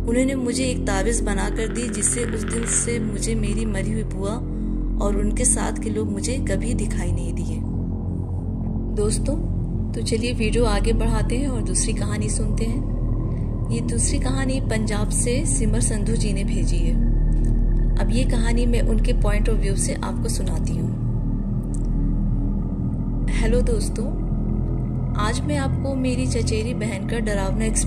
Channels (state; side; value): identical; both; correlation 1.00